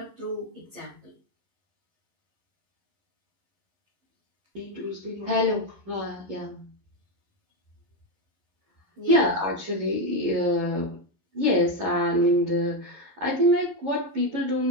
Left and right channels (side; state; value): left; late; 11 ms